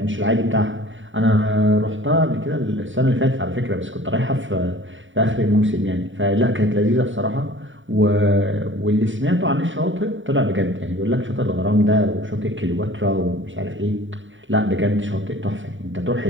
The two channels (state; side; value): late; left; 0.56 ms